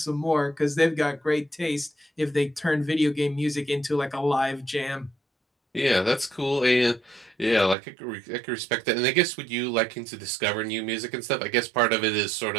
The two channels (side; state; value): left; drops out; at 7.8 s